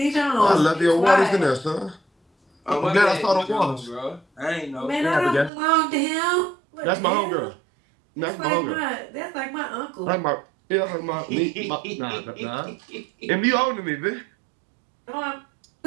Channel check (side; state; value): left; drops out; at 5.5 s